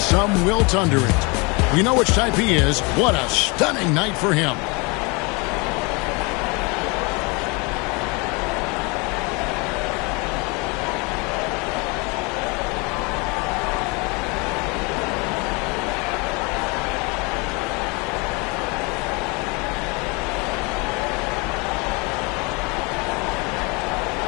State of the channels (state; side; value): quieter; right; 28.9 dB